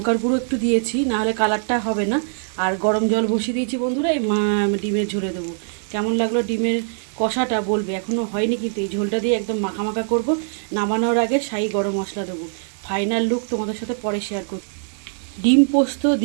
গুঁড়ো একটু দিয়েছি, নাহলে কালারটা হবে না। আর গরম জল বসিয়ে দিয়েছি বন্ধুরা, এই ডিমের ঝোলে দেবো। কেমন লাগলো ডিমের কষাটা বলবে। এখনও হয়নি কিন্তু এই ঝোলটা দিয়ে একদম মাখা মাখা করবো। নামানোর আগে শাহি গরম মশলা দেবো। ফাইনাল লুক তোমাদের সাথে পরে শেয়ার করব। ডিম পোস্ত,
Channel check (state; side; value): silent; left; digital silence